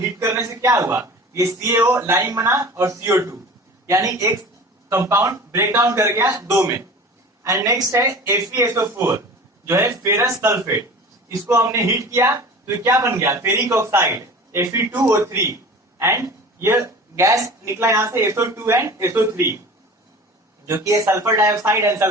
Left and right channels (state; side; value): normal; both; correlation 0.39